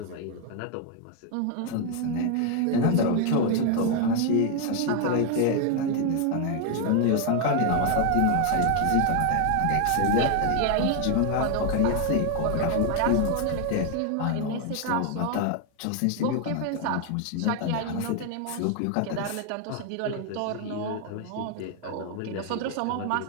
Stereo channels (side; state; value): both; different; correlation 0.00